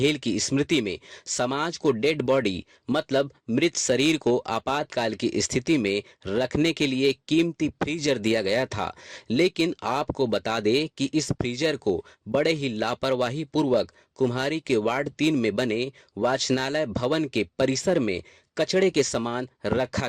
की स्मृति में समाज को डेड बॉडी मतलब मृत शरीर को आपातकाल की स्थिति में रखने के लिए कीमती फ्रीजर दिया गया था। लेकिन आपको बता दें कि इस फ्रीजर को बड़े ही लापरवाही पूर्वक कुम्हारी के वार्ड 3 में बने वाचनालय भवन के परिसर में कचड़े के समान रखा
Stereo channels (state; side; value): identical; both; correlation 1.00